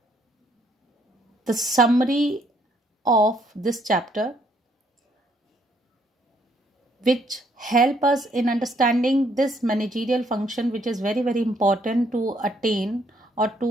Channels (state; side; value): normal; both; correlation 0.68